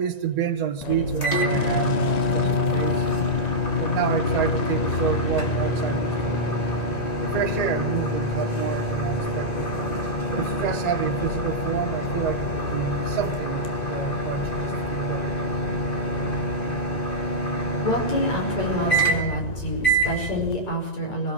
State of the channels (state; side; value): late; right; 1.9 ms